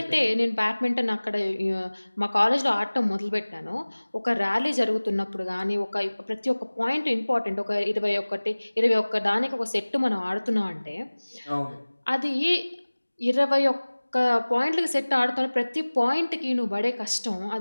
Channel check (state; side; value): inverted; both; correlation -1.00